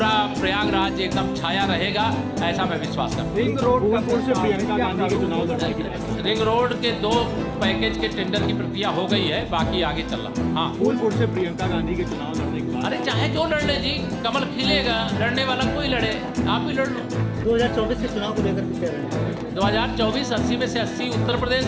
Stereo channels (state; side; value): identical; both; correlation 1.00